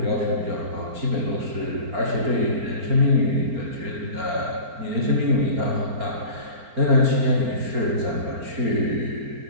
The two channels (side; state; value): left; late; 4.4 ms